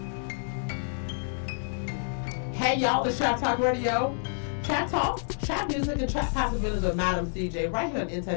Hey y'all, it's Trap Talk Radio. Trap Talk, trap music, and trap possibilities with Madam CJ right here on In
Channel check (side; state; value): right; silent; digital silence